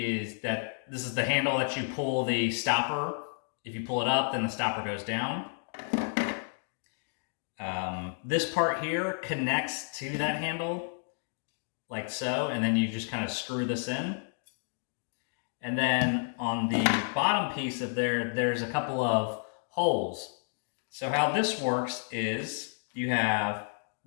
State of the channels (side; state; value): right; silent; 57 dB below the other